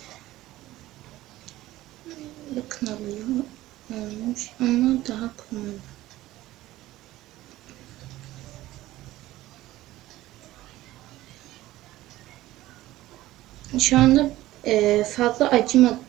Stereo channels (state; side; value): quieter; left; 16.2 dB